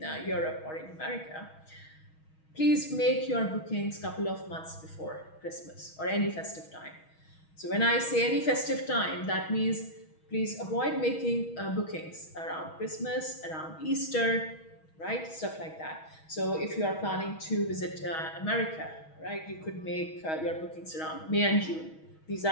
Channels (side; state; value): right; late; 6.3 ms